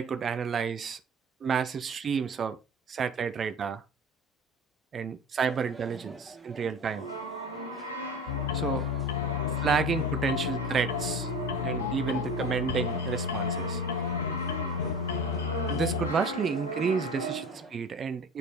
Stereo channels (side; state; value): both; normal; correlation 0.36